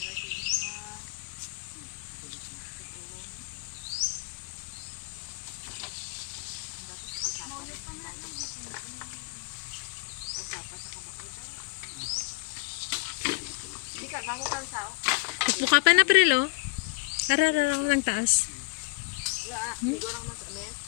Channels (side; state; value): right; quieter; 29.5 dB